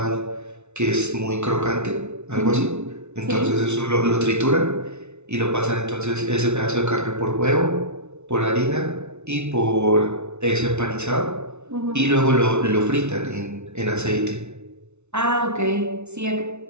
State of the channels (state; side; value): late; left; 0.82 ms